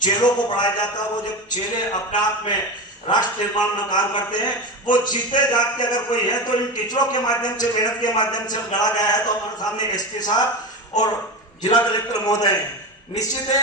चेलों को पढ़ाया जाता है, वो जब चेले अपने आप में राष्ट्र निर्माण में काम करते हैं, वो जीते जागते अगर कोई है तो इन टीचरों के माध्यम से, मेहनत के माध्यम से गढ़ा गया है। तो हमारे सामने एसपी साहब और जिला कलेक्टर महोदय हैं। निश्चित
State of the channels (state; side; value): normal; both; correlation 0.23